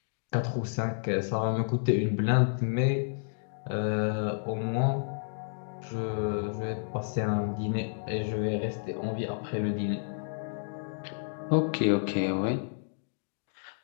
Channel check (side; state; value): right; silent; digital silence